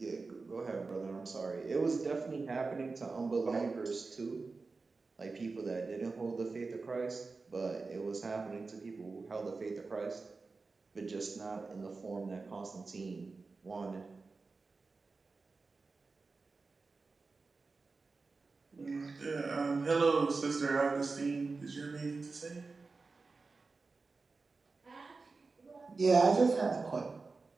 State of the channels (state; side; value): quieter; left; 4.0 dB